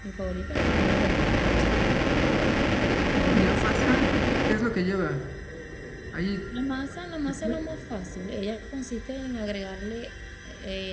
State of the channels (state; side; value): identical; both; correlation 1.00